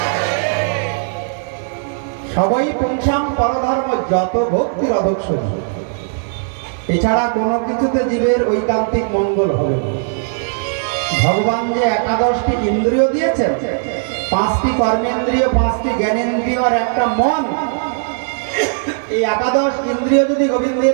সবাই পুংসাম পরধর্ম যত ভক্তির অধক্ষণী। এছাড়া কোনো কিছুতে জীবের ঐকান্তিক মঙ্গল হবে না। ভগবান যে একাদশটি ইন্দ্রিয় দিয়েছেন, 5টি কর্মেন্দ্রিয়, 5টি জ্ঞানেন্দ্রিয় আর একটা মন, এই একাদশ ইন্দ্রিয় যদি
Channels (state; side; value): silent; left; digital silence